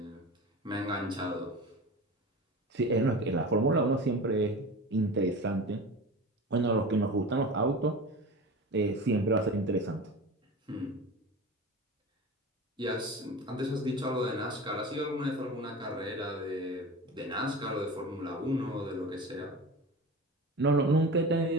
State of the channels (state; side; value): normal; both; correlation 0.32